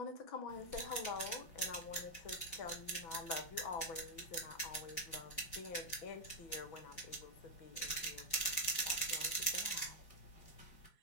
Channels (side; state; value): right; late; 5.2 ms